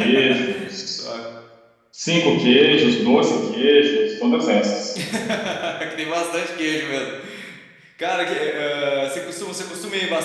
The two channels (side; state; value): both; identical; correlation 1.00